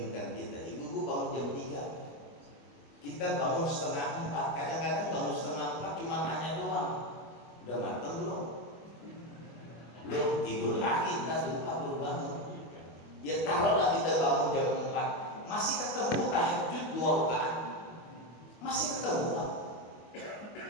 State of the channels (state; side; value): late; right; 25 ms